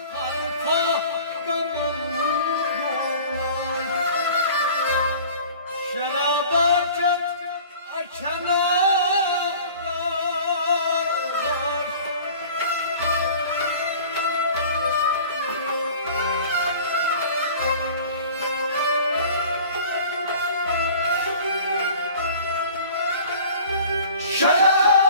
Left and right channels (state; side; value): inverted; both; correlation -0.45